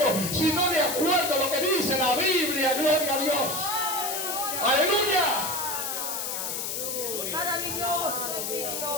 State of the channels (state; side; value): noise; left; hiss, 3 dB below the sound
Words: sino de acuerdo a lo que dice la Biblia. Gloria a Dios. Aleluya. Maravilloso.